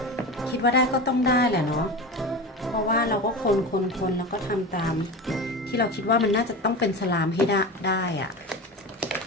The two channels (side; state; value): both; normal; correlation 0.27